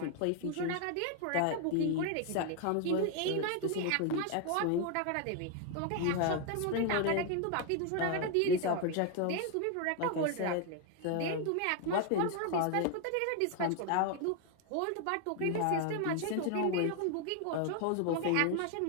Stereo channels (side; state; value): both; different; correlation 0.01